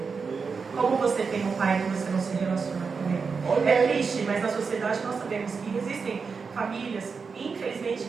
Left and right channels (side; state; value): left; quieter; 5.2 dB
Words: Como você tem um pai que você não se relaciona com Ele? É triste, mas na sociedade nós sabemos que existem famílias, infelizmente,